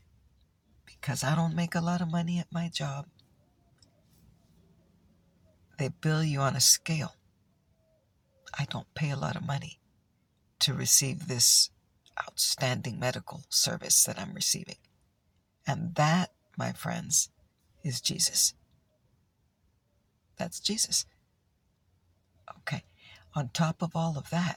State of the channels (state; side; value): identical; both; correlation 1.00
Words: because I don't make a lot of money at my job. They bill you on a scale. I don't pay a lot of money to receive this outstanding medical service that I'm receiving. And that, my friends, is Jesus. That's Jesus. Okay. On top of all of